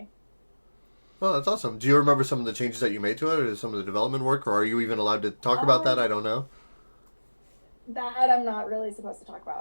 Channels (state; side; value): inverted; both; correlation -1.00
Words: Well, that's awesome. Do you remember some of the changes that you made to it, or some of the development work, or are you even allowed to talk about that? I don't know. That I'm not really supposed to talk